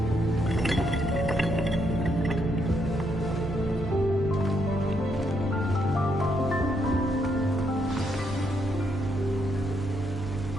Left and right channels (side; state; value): both; normal; correlation 0.76